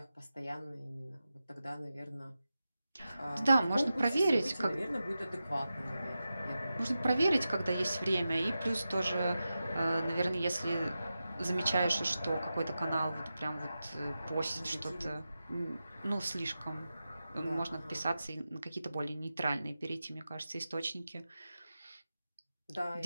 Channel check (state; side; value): inverted; both; correlation -0.92